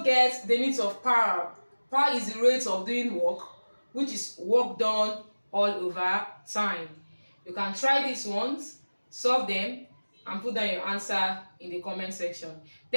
get the unit of power. Power is the rate of doing work, which is work done all over time. You can try these ones, solve them, and put down your answer in the comment section.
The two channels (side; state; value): both; inverted; correlation -1.00